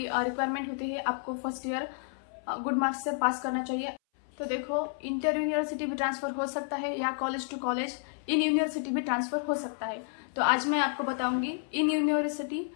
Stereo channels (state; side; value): silent; right; 57 dB below the other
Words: होती है आपको फर्स्ट ईयर गुड मार्क्स से पास करना चाहिए। तो देखो, इंटर यूनिवर्सिटी भी ट्रांसफर हो सकता है या college to college in university भी ट्रांसफर हो सकता है। तो आज मैं आपको बताऊंगी in university